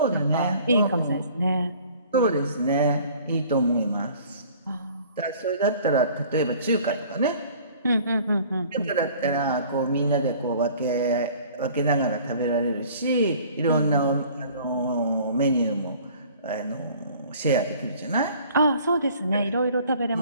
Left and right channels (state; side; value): inverted; both; correlation -0.51